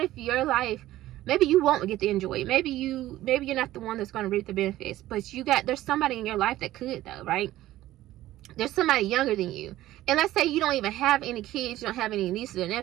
if your life, maybe you won't get to enjoy it. Maybe you're not the one that's going to reap the benefits, but there's somebody in your life that could, though, right? There's somebody younger than you. And let's say you don't even have any kids, you don't have any nieces or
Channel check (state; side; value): quieter; left; 15.1 dB